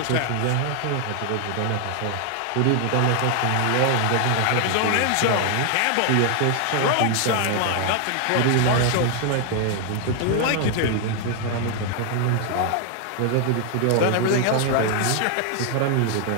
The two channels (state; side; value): different; both; correlation 0.00